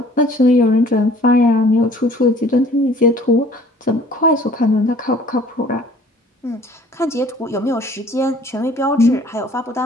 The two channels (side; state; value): both; normal; correlation 0.53